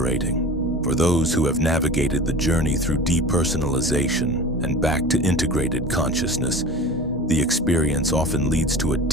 For those who have navigated the journey through depersonalization and back to integrated consciousness, the experience often leads to a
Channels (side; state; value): both; normal; correlation 0.36